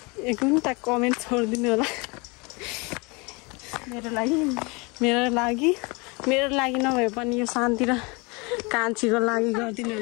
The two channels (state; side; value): quieter; right; 28.2 dB